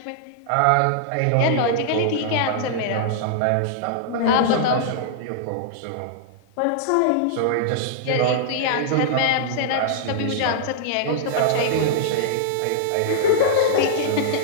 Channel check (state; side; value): different; both; correlation -0.01